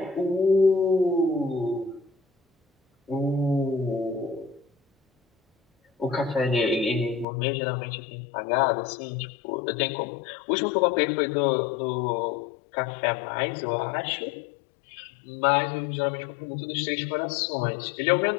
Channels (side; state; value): right; drops out; at 7.2 s